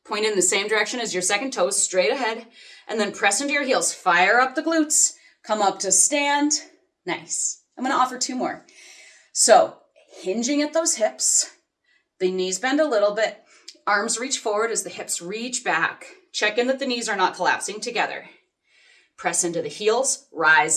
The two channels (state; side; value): identical; both; correlation 1.00